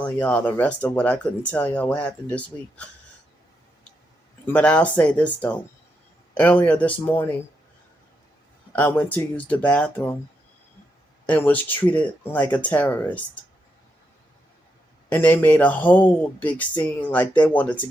y'all the rest of what I couldn't tell y'all what happened this week. But I'll say this though. Earlier this morning I went to use the bathroom and was treated like a terrorist. And they made a whole big scene like they wanted to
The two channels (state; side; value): normal; both; correlation 0.82